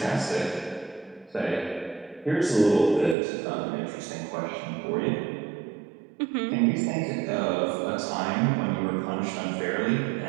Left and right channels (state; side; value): drops out; left; at 3.2 s